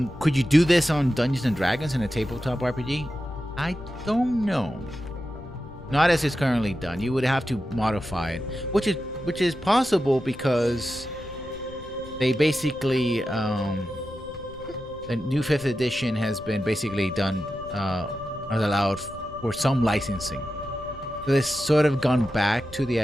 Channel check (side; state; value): left; noise; rumble, 17 dB below the sound